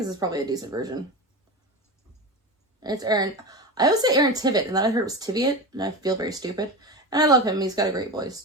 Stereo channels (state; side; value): normal; both; correlation 0.24